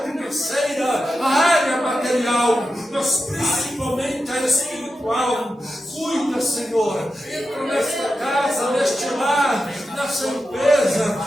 financeira, a área material, mas principalmente a espiritual. Cuida, Senhor, entra nesta casa, neste lar, nessa empresa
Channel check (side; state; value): both; normal; correlation 0.90